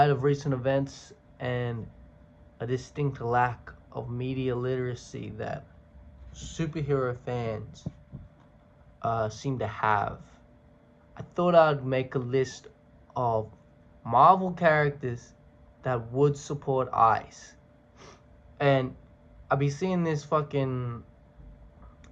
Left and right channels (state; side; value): identical; both; correlation 1.00